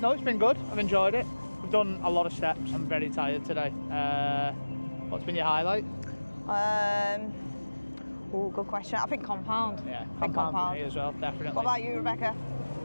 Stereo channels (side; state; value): both; inverted; correlation -1.00